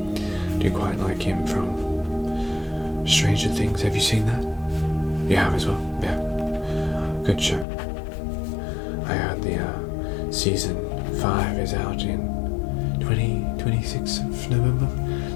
Do you quite like him from Stranger Things? Have you seen that? You have as well? Yeah. Good show. I heard the season 5 is out in 26th of November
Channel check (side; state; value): right; drops out; at 7.7 s